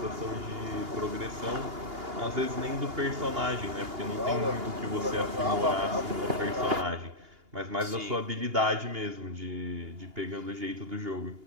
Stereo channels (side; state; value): left; late; 2.8 ms